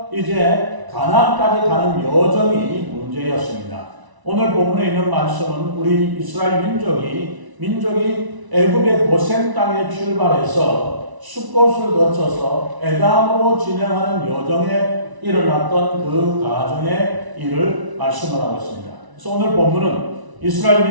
이제 가나안까지 가는 여정이 문제였습니다. 오늘 본문에 있는 말씀은 우리 이스라엘 민족이 애굽의 고센 땅에 출발해서 숫곳을 거쳐서 에담으로 진행하는 여정에 일어났던 그 가정의 일을 말씀을 하고 있습니다. 그래서 오늘 본문은 이스라엘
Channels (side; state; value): left; late; 1.0 ms